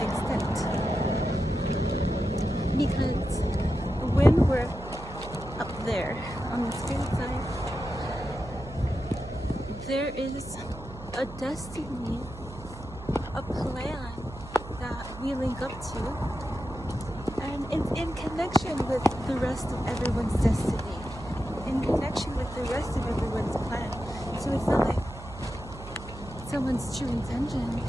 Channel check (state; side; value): noise; right; hum, 14 dB below the sound